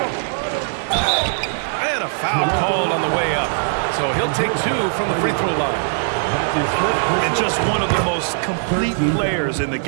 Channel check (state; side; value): silent; left; 59 dB below the other